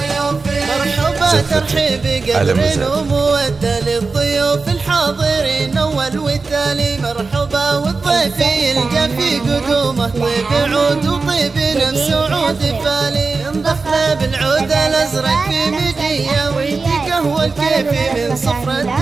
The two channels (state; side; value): quieter; left; 4.2 dB